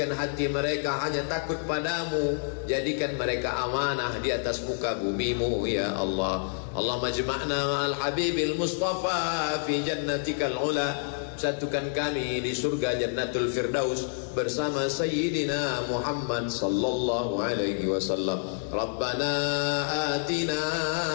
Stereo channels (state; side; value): silent; right; 55 dB below the other